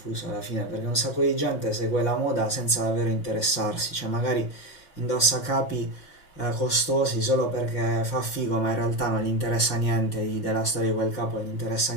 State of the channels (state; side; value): late; right; 5.7 ms